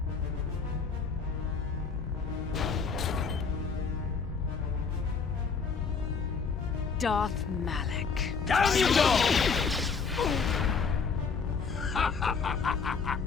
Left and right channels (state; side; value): quieter; right; 5.4 dB